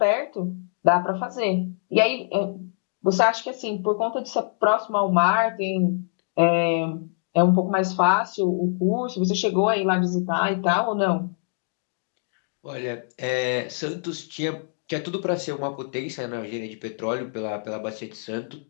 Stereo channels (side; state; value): right; silent; digital silence